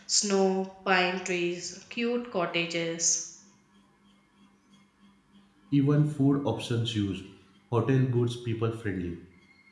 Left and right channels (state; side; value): identical; both; correlation 1.00